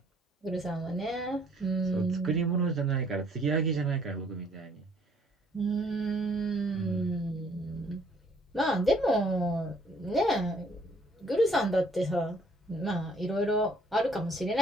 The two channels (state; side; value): normal; both; correlation 0.62